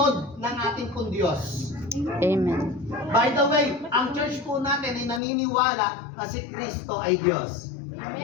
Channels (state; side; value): drops out; right; at 5.2 s